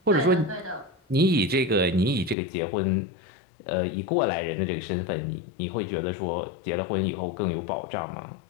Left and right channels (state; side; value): drops out; right; at 2.4 s